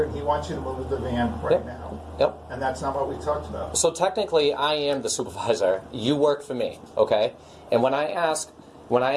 and he wants you to move the van right now. Yep. And that's not what we talked about. So technically, I am the supervisor. You work for me, okay? And when I ask when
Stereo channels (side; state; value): both; identical; correlation 1.00